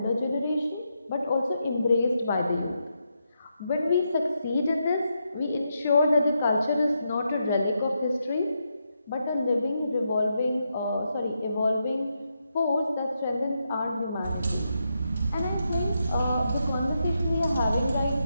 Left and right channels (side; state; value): both; inverted; correlation -0.83